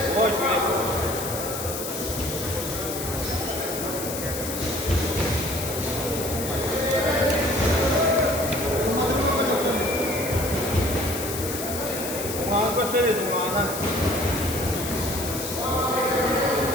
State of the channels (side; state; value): left; noise; hiss, 6 dB below the sound